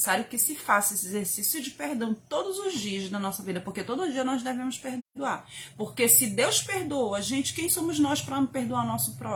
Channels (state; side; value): identical; both; correlation 1.00